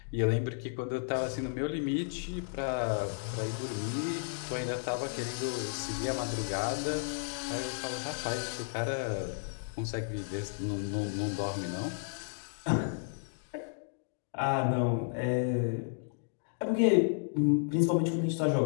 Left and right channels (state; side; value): silent; right; digital silence